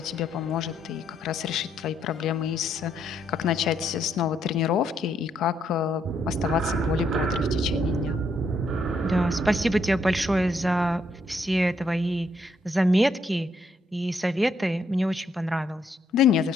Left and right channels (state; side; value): normal; both; correlation 0.74